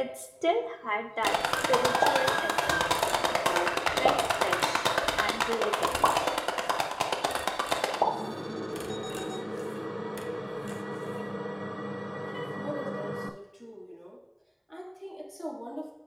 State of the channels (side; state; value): both; identical; correlation 1.00